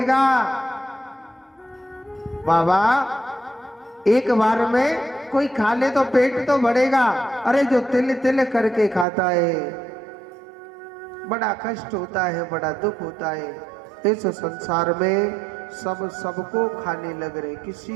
बाबा, एक बार में कोई खा ले तो पेट तो भरेगा। अरे जो तिल तिल करके खाता है, बड़ा कष्ट होता है, बड़ा दुख होता है। इस संसार में सब सबको खाने लग रहे,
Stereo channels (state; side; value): drops out; left; at 9.1 s